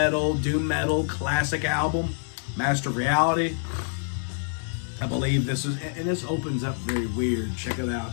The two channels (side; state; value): right; silent; 57 dB below the other